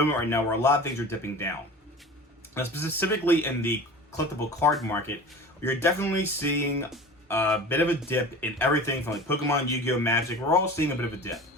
right now where a lot of things are dipping down. Now, specifically in the collectible card market, you're definitely seeing a bit of a dip in everything from like Pokemon, Yu-Gi-Oh, Magic. We're all seeing a bit of a dip.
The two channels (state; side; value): normal; both; correlation 0.37